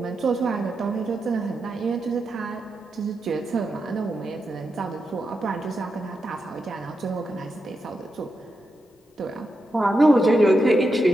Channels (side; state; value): both; normal; correlation 0.87